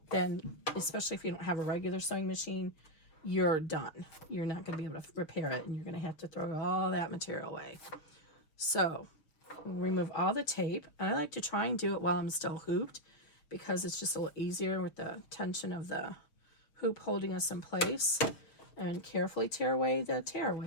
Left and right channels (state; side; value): late; right; 6.3 ms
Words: then especially if you don't have a regular sewing machine, you're done. You're not going to be able to repair it, and you're going to have to throw all that material away. So remove all the tape. I like to try and do it while I'm still hooped, because it's just a little easier with the tension of the hoop holding us in place. And carefully tear away the